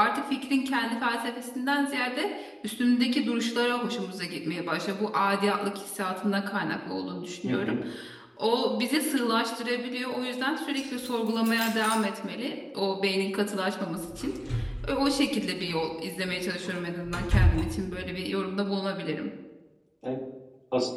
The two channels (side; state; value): both; identical; correlation 1.00